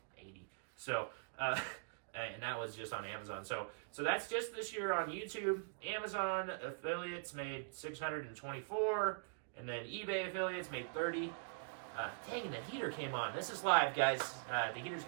So... and that was just on Amazon. So that's just this year on YouTube. Amazon affiliates made 624, and then eBay affiliates made 30. Dang, the heater came on. This is live, guys. The heater's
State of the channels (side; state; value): left; silent; digital silence